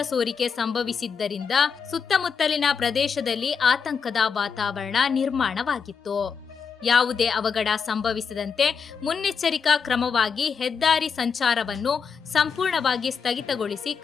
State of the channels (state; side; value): quieter; right; 6.1 dB